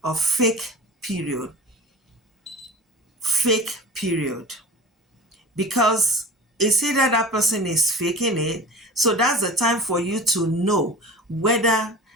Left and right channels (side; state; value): both; normal; correlation 0.36